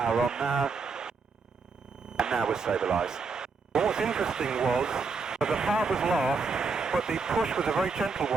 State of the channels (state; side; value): quieter; left; 4.5 dB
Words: on now. And now we're stabilised. Well, what's interesting was that the power was last, but the push was a very gentle